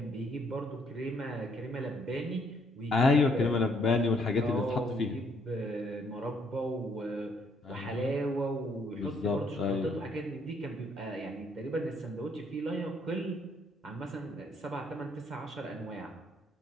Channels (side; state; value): both; normal; correlation 0.68